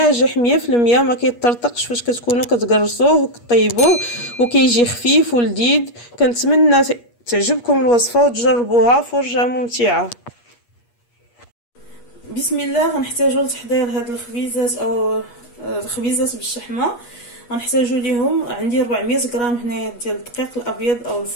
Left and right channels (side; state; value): right; late; 8.4 ms